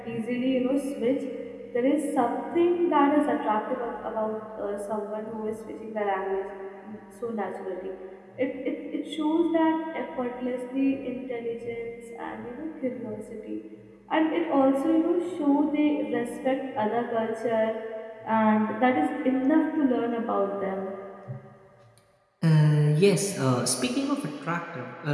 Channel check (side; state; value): both; identical; correlation 1.00